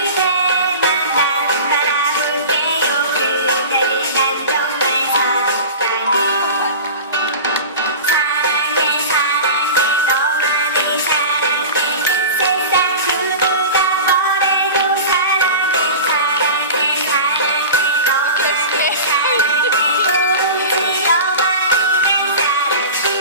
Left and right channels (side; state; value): both; inverted; correlation -0.33